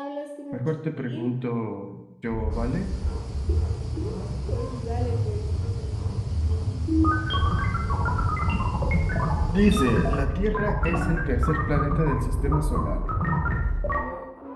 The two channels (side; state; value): both; identical; correlation 1.00